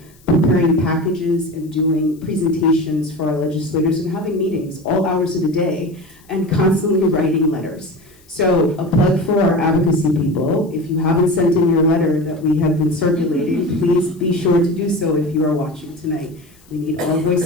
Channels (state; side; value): noise; left; hiss, 29 dB below the sound